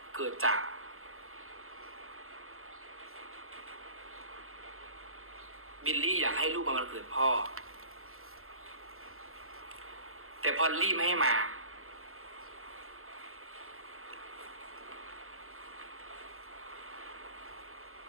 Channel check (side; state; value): left; late; 0.62 ms